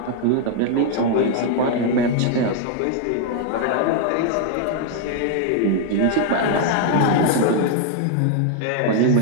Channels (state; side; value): different; both; correlation 0.00